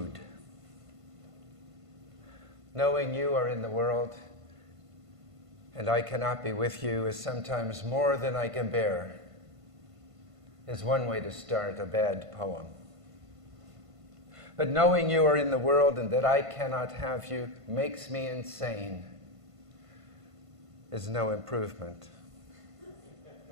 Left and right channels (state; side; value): late; left; 1.5 ms